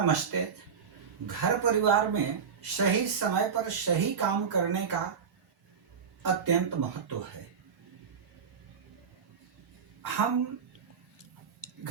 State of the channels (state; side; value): quieter; left; 6.6 dB